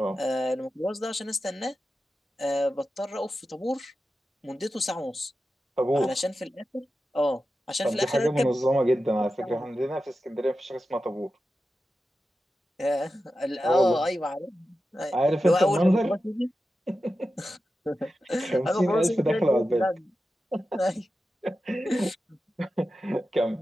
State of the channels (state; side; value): normal; both; correlation 0.92